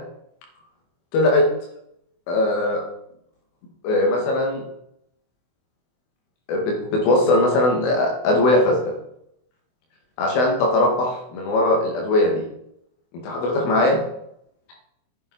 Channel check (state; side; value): late; right; 24 ms